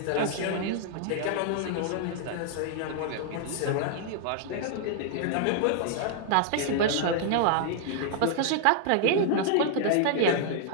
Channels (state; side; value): different; both; correlation -0.01